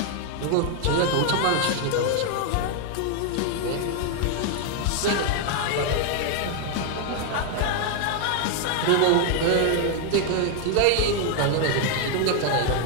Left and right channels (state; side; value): different; both; correlation 0.00